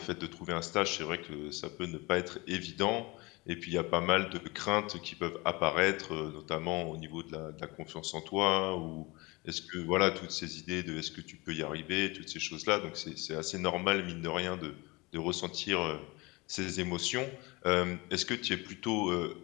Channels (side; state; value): right; quieter; 24.4 dB